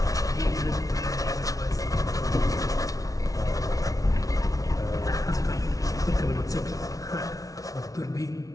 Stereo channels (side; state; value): right; late; 0.17 ms